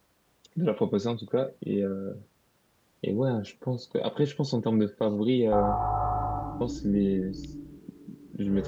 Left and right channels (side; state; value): both; identical; correlation 1.00